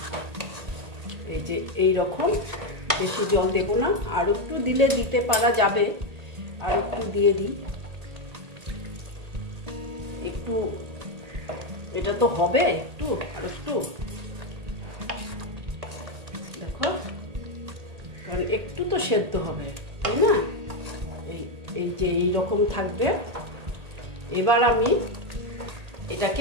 এই যে এই রকম, বেশি জল দেবো না, আর একটু দিলে দিতে পারা যাবে, আর একটু দিয়ে দিই একটু। এটা তো হবে একটু, আর একটু দেখো, কারণ একটু তো সেদ্ধ হবে, তাই না? এই যে এইরকম থাকবে। এবার আমি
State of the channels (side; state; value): left; late; 1.8 ms